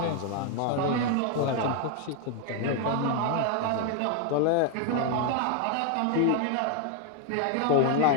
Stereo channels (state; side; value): different; both; correlation 0.01